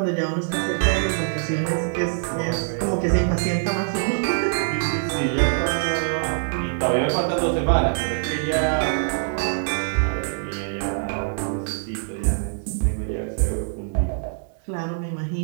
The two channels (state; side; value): silent; left; digital silence